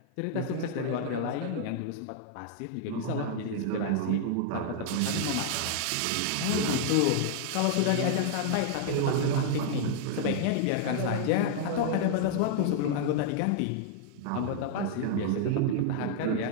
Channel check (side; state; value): both; different; correlation -0.01